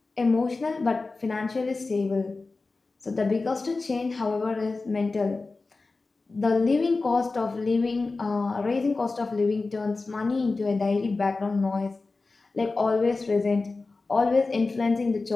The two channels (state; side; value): quieter; right; 3.7 dB